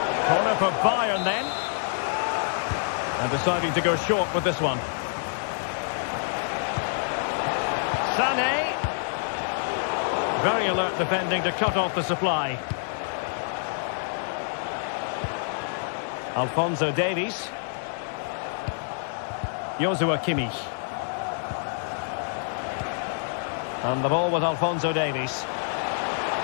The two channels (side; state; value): right; silent; digital silence